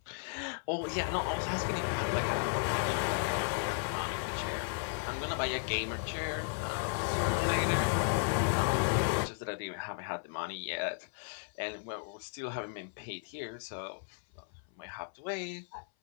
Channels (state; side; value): silent; right; 55 dB below the other